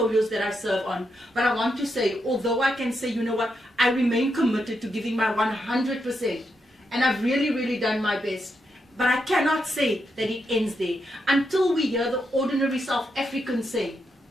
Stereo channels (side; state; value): both; normal; correlation 0.83